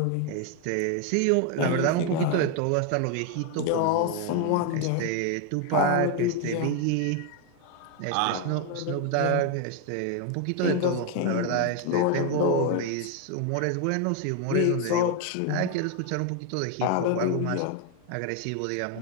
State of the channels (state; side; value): different; both; correlation 0.01